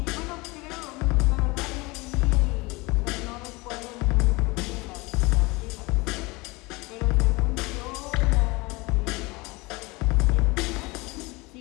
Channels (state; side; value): quieter; right; 24.3 dB